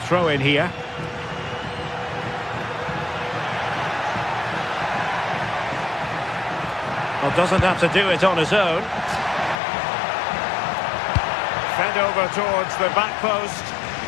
Throw in here. Well, doesn't have to do it on his own. Fed over towards the back post.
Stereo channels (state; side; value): drops out; right; at 9.6 s